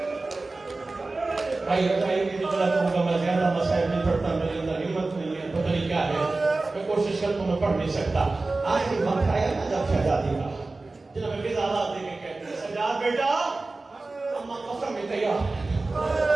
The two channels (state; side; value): quieter; left; 3.4 dB